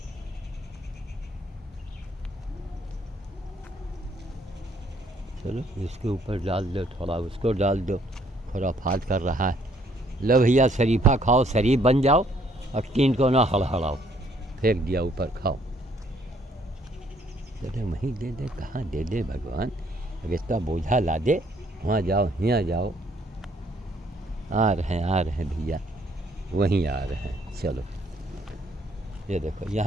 चलो इसके ऊपर डाल दो, थोड़ा उसको डाल दो, खुराफात कर रहा है। लो भैया शरीफा खाओ, शरीफ बन जाओ, और तीन को ना हड़हड़ाओ, फेंक दिया ऊपर, खाओ। चले वहीं दे दे, कहाँ दे दे भगवान, अब इसका बोझा ला दे, वहाँ जाओ, यहाँ जाओ। आ रहे हैं भैया, वहीं आ रहे हैं। चलो ये देखो,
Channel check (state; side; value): normal; both; correlation 0.66